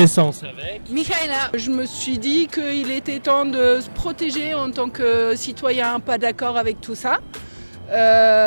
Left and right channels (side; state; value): both; inverted; correlation -1.00